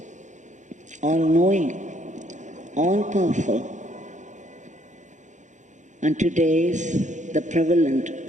all-knowing, all-powerful. And today's the prevalent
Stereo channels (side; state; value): left; late; 0.35 ms